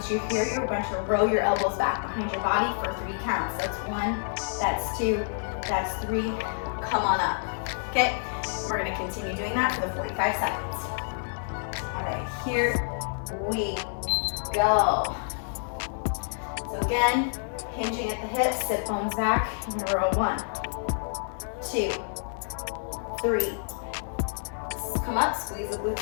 you're here, you're going to roll your elbows back behind your body for 3 counts. That's 1, that's 2, that's 3. Come on up. Okay, we're going to continue doing that for the 45 seconds. All right, here we go. So again, hinging at the hips, sit bones back, in a row. 1, 2, 3. Come up, squeeze the glutes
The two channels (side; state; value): right; silent; 59 dB below the other